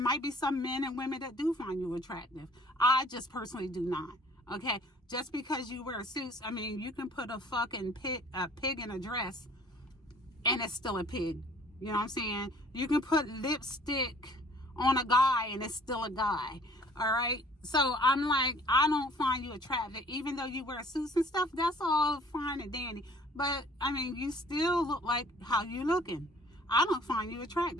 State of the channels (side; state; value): both; normal; correlation 0.54